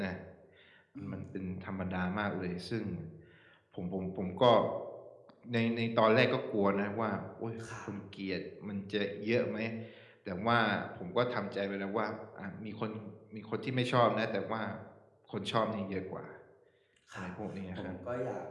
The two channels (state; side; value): identical; both; correlation 1.00